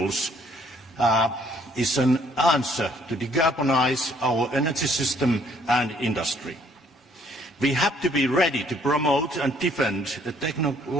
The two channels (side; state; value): both; normal; correlation 0.63